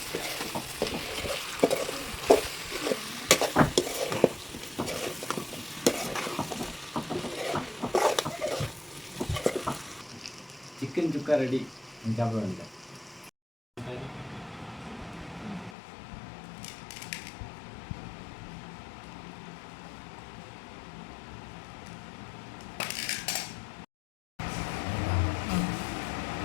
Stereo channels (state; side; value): drops out; right; at 15.8 s